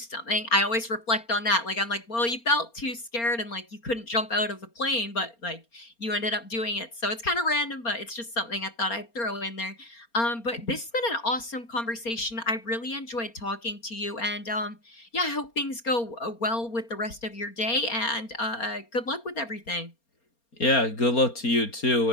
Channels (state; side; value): late; right; 4.3 ms